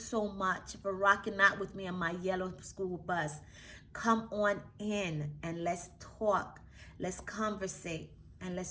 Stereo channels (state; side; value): identical; both; correlation 1.00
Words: much for rocking out with me on my yellow school bus. Come on in and let's talk. Let's conversate. and